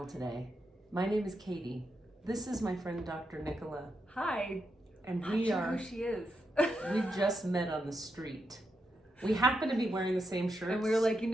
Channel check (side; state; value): both; normal; correlation 0.84